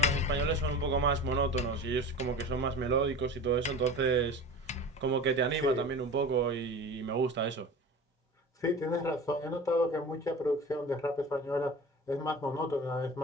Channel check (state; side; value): normal; both; correlation 0.35